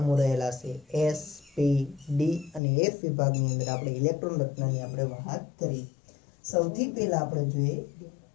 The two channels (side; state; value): right; drops out; at 2.6 s